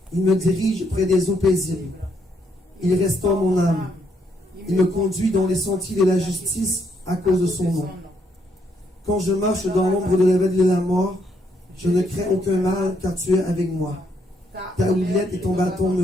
Il me dirige près des eaux paisibles. Il restaure mon âme. Il me conduit dans les sentiers de la justice à cause de son nom. Quand je marche dans l'ombre de la vallée de la mort, je ne crains aucun mal, car tu es avec moi. Ta houlette et ton bâton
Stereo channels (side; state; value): both; normal; correlation 0.73